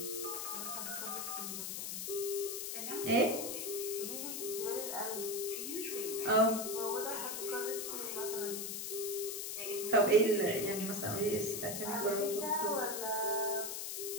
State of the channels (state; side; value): noise; left; hiss, 4 dB below the sound